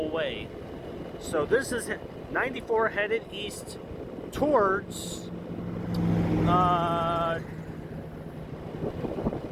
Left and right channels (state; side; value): identical; both; correlation 1.00